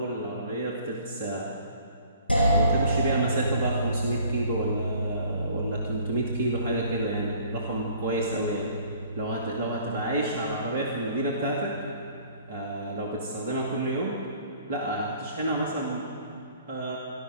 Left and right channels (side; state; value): both; inverted; correlation -0.55